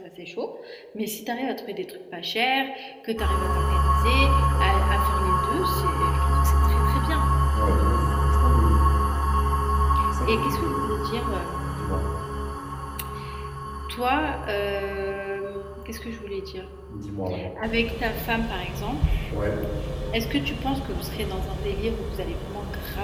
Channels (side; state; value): both; identical; correlation 1.00